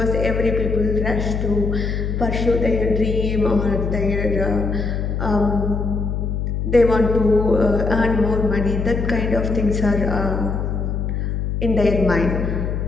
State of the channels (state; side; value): noise; left; hum, 1 dB below the sound